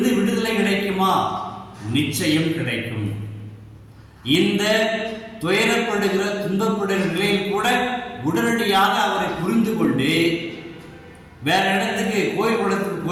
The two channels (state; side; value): identical; both; correlation 1.00